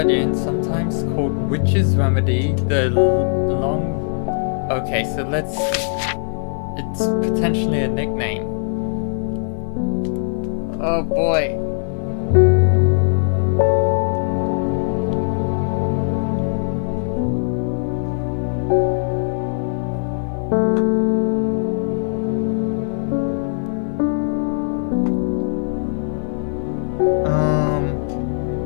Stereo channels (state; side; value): silent; right; digital silence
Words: so let's... It's potentially a nickname. Oh boy.